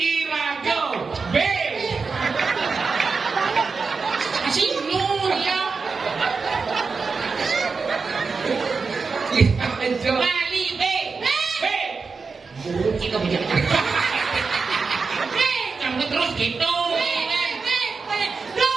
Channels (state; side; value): quieter; left; 4.7 dB